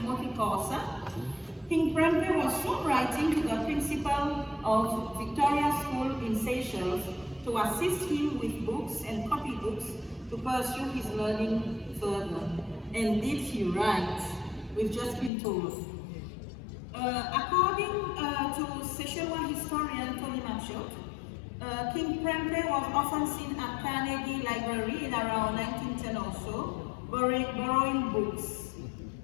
Corsa, King Prempeh was soon writing to the principal of Victoria School in Seychelles to assist him with books and copybooks to pursue his learning further. And did he write? We've just been told. According to Seychellois historian Tony Machot, King Prempeh was often seen at Carnegie Library in around 1910 or so, borrowing books.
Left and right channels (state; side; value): drops out; right; at 15.3 s